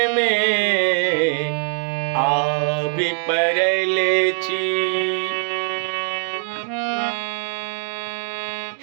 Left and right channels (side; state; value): left; silent; digital silence